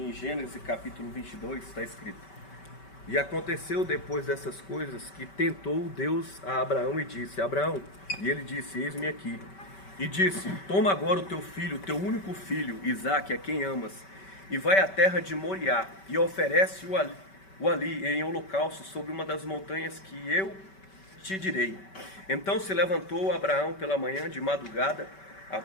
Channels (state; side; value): late; right; 5.2 ms